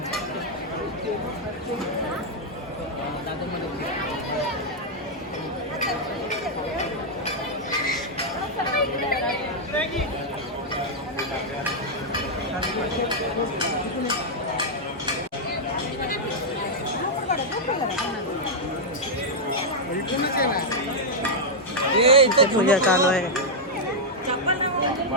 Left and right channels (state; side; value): normal; both; correlation -0.05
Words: इथे पूजा चालू आहे.